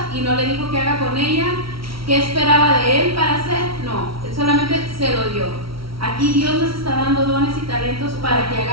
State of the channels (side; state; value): left; late; 0.75 ms